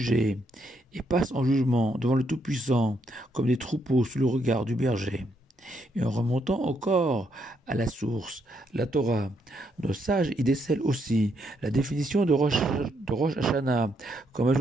et passe en jugement devant le Tout-Puissant comme des troupeaux sous le regard du berger. Et en remontant encore à la source, la Torah, nos sages y décèlent aussi la définition de Rosh Hashanah comme un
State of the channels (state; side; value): normal; both; correlation 0.76